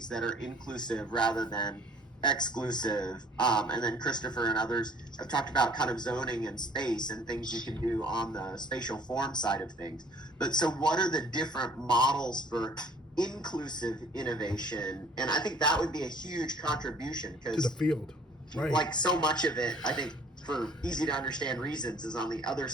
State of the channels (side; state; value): both; normal; correlation 0.55